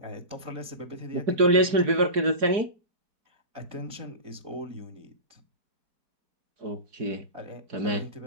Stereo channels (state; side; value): late; left; 4.7 ms